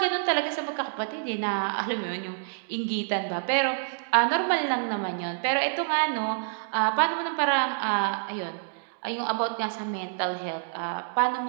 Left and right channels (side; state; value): left; silent; digital silence